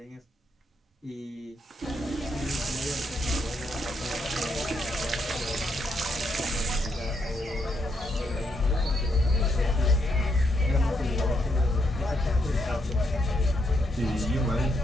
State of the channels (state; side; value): normal; both; correlation 0.78